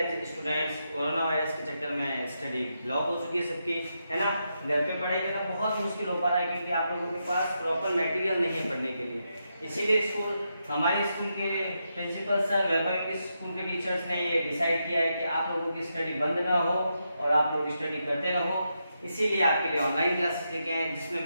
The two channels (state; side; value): inverted; both; correlation -0.84